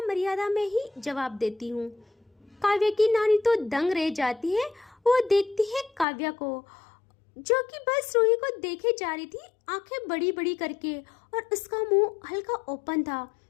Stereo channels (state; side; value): drops out; right; at 6.1 s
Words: मर्यादा में ही जवाब देती हूँ। काव्या की नानी तो दंग रह जाती है। वो देखती है काव्या को जो कि बस रूही को देखे जा रही थी, आंखें बड़ी बड़ी करके, और उसका मुंह हल्का ओपन था।